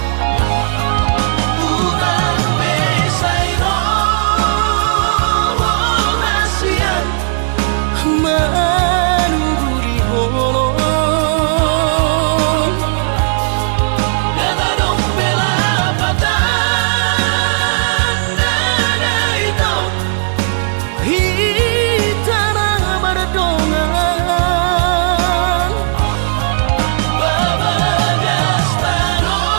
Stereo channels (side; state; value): left; silent; digital silence